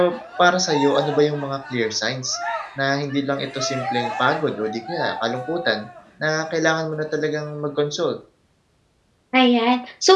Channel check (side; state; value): both; identical; correlation 1.00